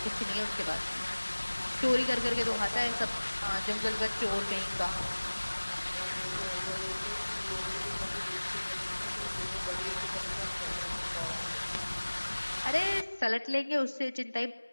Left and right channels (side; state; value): both; inverted; correlation -1.00